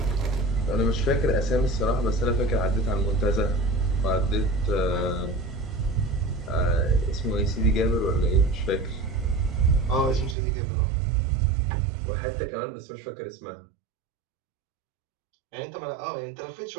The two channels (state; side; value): drops out; left; at 10.4 s